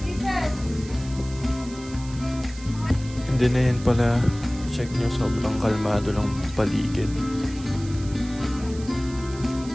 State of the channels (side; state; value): right; noise; hiss, 18 dB below the sound